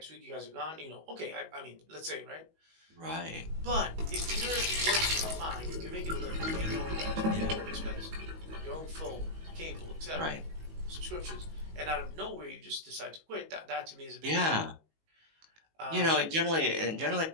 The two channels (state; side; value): late; left; 19 ms